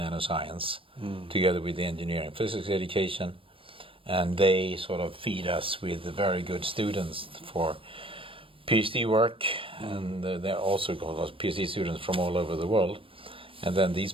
together with the engineering physics education. And they sort of feed us with very good students for Ph.D. work, and they're also called Ph.D. students from all over the world. And then these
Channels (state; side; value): late; left; 0.26 ms